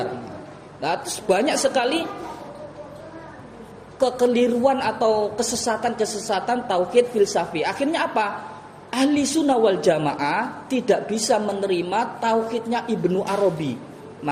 Nah, terus banyak sekali kekeliruan atau kesesatan tauhid filsafi. Akhirnya apa? Ahli sunnah wal jamaah tidak bisa menerima tauhidnya Ibnu Arabi.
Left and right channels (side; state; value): both; identical; correlation 1.00